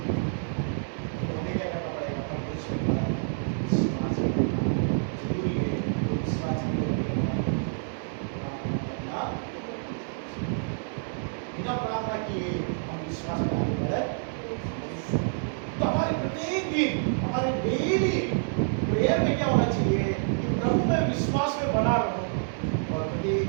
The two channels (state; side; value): silent; left; digital silence